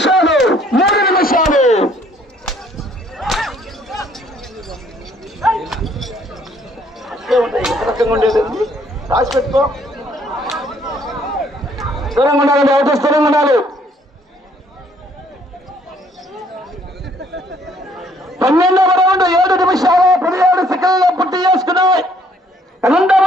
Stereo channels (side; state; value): both; normal; correlation 0.63